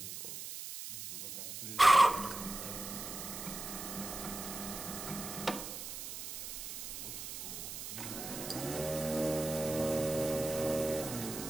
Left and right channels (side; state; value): right; noise; hiss, 7 dB below the sound